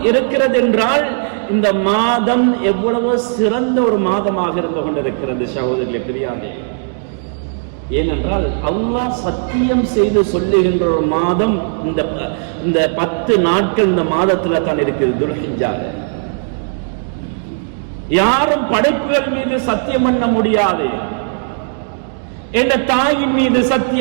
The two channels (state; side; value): silent; left; digital silence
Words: இருக்கிறது என்றால் இந்த மாதம் எவ்வளவு சிறந்த ஒரு மாதமாக இருந்து கொண்டிருக்கிறது சகோதரர்களே, பெரியாரே. ஏனென்றால் அல்லாஹ் சத்தியம் செய்து சொல்லுகின்ற ஒரு மாதம் இந்த 10 நாட்கள் இந்த மாதத்துல தான் இருக்குது, துல்ஹிஜ்ஜால. யாரும் படைப்புகள் மீது சத்தியம் பண்ண முடியாது. என்ற தாயின் மீது